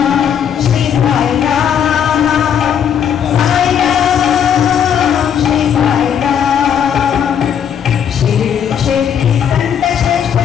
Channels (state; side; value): quieter; right; 8.5 dB